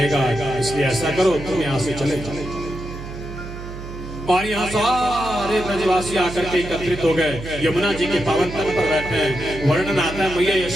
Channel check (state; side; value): noise; right; hum, 11 dB below the sound